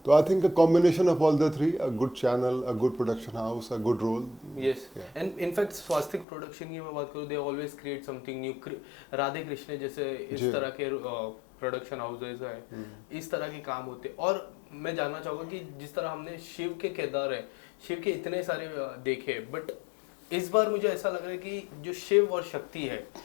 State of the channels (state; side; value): drops out; right; at 6.2 s